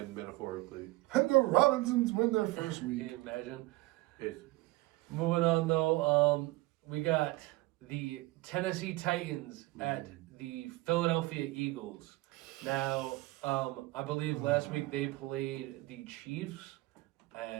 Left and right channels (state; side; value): quieter; left; 20.3 dB